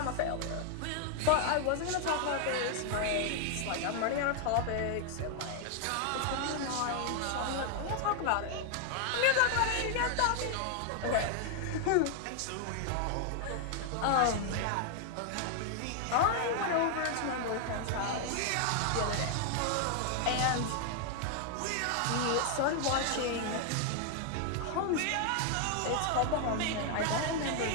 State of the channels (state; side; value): different; both; correlation 0.00